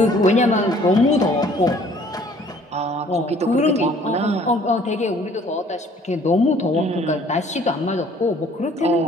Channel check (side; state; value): both; normal; correlation 0.57